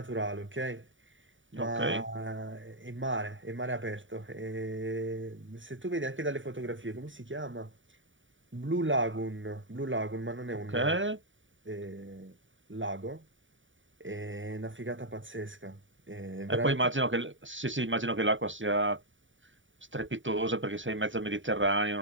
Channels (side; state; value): left; late; 0.56 ms